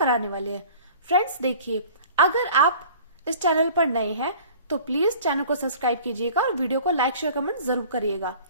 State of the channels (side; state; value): both; inverted; correlation -0.46